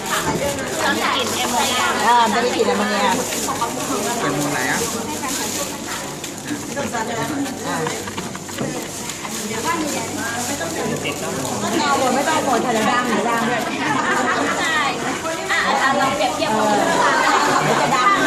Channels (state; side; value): identical; both; correlation 1.00